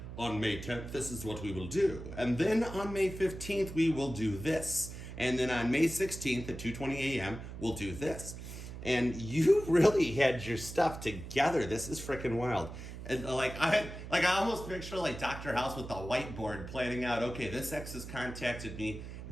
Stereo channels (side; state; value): right; noise; hum, 10 dB below the sound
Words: on May 10th, this is what we will do. And then on May 15th, we will do this. And then on May 16th at 2:20 a.m., we'll do this. And you really had your stuff together. This is freaking wild. And I almost picture Dr. House with the whiteboard planning out, okay, this X has contacted me.